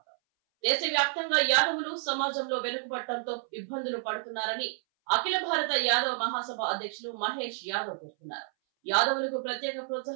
దేశవ్యాప్తంగా యాదవులు సమాజంలో వెనుకబడటంతో ఇబ్బందులు పడుతున్నారని అఖిల భారత యాదవ మహాసభ అధ్యక్షులు మహేష్ యాదవ్ పేర్కొన్నారు. యాదవులకు ప్రత్యేక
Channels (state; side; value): silent; left; 58 dB below the other